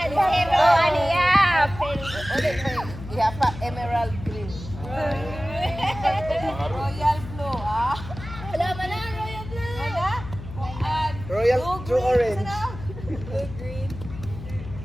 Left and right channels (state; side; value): noise; left; hum, 12 dB below the sound